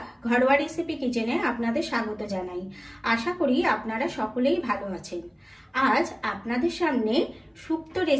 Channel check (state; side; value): identical; both; correlation 1.00